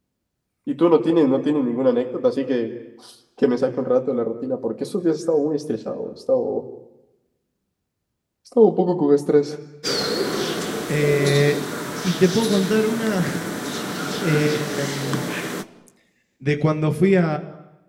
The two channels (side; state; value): both; identical; correlation 1.00